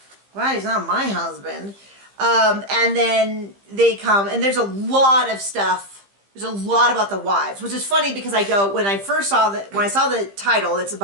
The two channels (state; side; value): late; left; 15 ms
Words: glad he's not my husband. And then they come, and there's a lot of stuff. There's a lot about the wives, which is funny because when I saw the title, it's